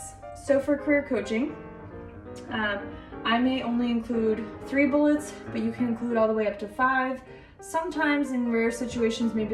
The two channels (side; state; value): both; identical; correlation 1.00